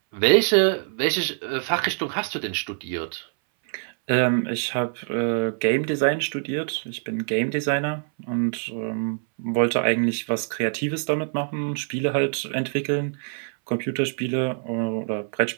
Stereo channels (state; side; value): silent; left; 62 dB below the other